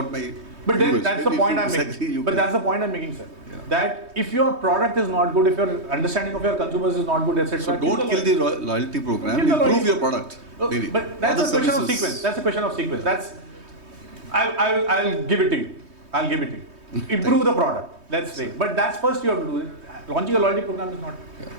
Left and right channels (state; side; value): late; left; 3.2 ms